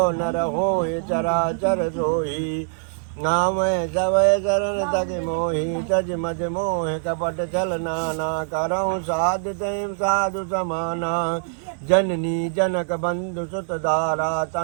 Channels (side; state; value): left; silent; digital silence